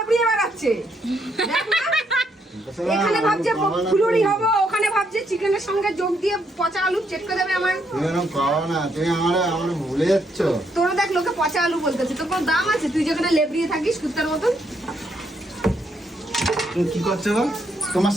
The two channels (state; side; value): normal; both; correlation 0.75